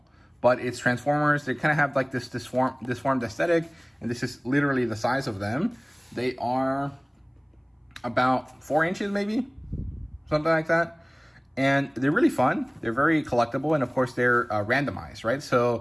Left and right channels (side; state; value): both; identical; correlation 1.00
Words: but it's Transformers. They kind of have like this disformed aesthetic, and this is literally the size of them. They are about 4 inches, maybe, something like that. And they're really fun. They're very collectible, and of course they're randomized, right?